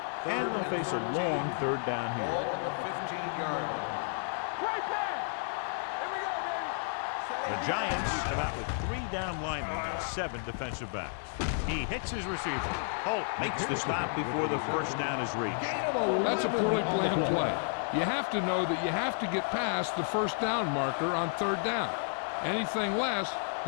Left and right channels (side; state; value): right; silent; digital silence